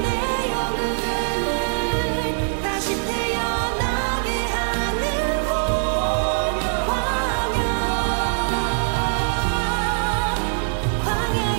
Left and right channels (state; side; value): silent; left; digital silence